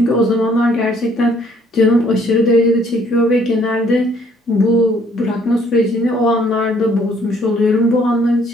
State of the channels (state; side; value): normal; both; correlation 0.63